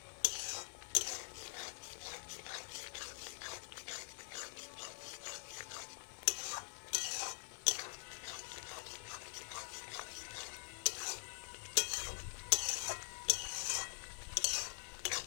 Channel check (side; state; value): right; silent; digital silence